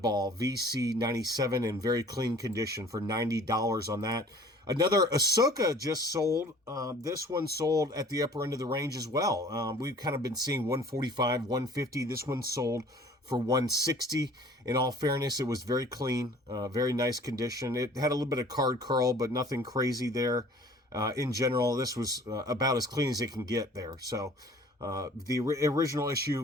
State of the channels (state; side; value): normal; both; correlation 0.50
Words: VC97 in very clean condition for $90 on that. Another Ahsoka just sold. This one sold at the upper end of the range as well. We've kind of been seeing 145, 150. This one sold for 160. In all fairness, it was very clean, very nice condition. It had a little bit of card curl, but nothing crazy there. In general, this was about as clean as it can get there. So the original